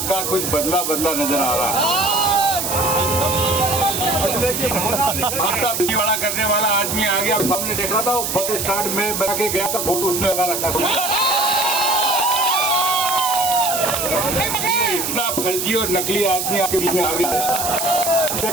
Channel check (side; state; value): right; noise; hiss, 2 dB below the sound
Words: का कुछ बदला बदला नजर आ रहा है। करने वाला आदमी आ गया, सामने देख रहा था, वो बस स्टैंड में बना के गया था, फोटो उसने लगा रखा था। इतना फर्जी और नकली आदमी आपके बीच में आ गया।